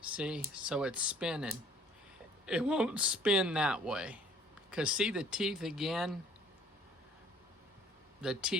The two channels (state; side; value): normal; both; correlation 0.56